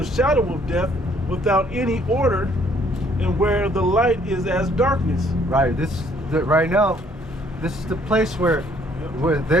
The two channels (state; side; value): normal; both; correlation 0.63